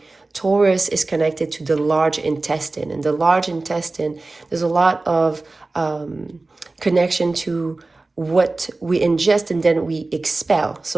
Taurus is connected to the large intestine. And the large intestine, there's a lot of connection to what we ingest and then we expel.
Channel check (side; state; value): left; quieter; 3.3 dB